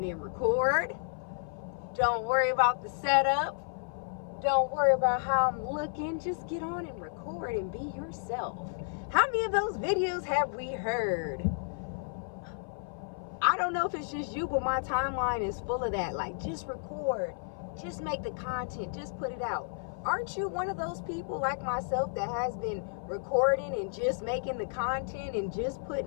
and record. Don't worry about the setup. Don't worry about how I'm looking. Just get on and record and be yourself. How many of those videos have we heard? I don't know if it's just you, but my timeline is full of that. Like, just record. Just make the content. Just put it out. Aren't you one of those people like myself that has been recording and just making the content and just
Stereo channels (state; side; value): silent; right; 56 dB below the other